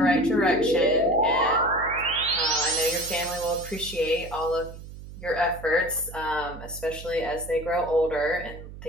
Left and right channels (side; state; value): right; noise; hum, 14 dB below the sound